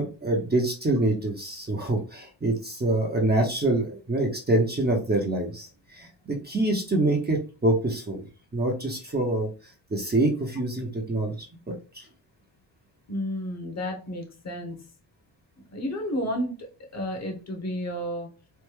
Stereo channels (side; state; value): both; normal; correlation 0.37